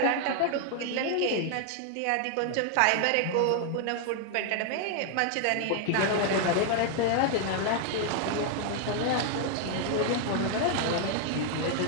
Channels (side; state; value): both; different; correlation 0.00